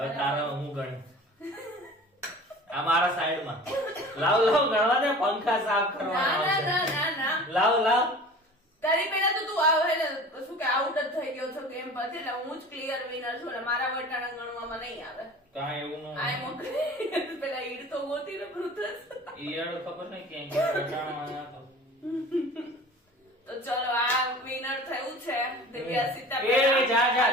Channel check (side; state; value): both; normal; correlation 0.41